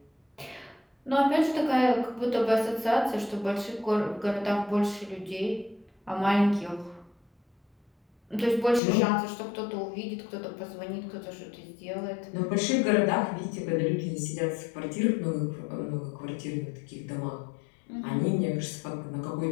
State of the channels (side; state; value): right; drops out; at 8.8 s